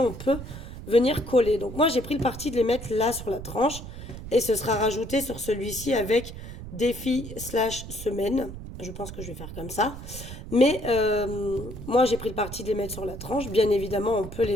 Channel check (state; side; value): noise; right; rumble, 11 dB below the sound